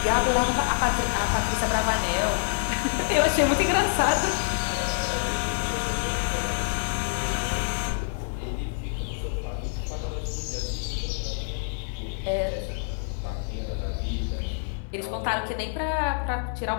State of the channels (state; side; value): silent; right; 58 dB below the other